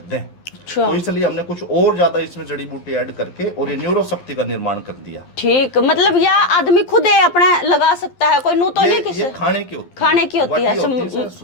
दें, तो इसलिए हमने कुछ और ज्यादा इसमें जड़ी बूटी ऐड करके और ये न्यूरो शक्ति का निर्माण कर दिया। ठीक, मतलब यह आदमी खुद ही अपने लगा सकता है, कोई नू तो नहीं किसी। ये खाने की होती है, खाने की होती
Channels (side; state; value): right; late; 11 ms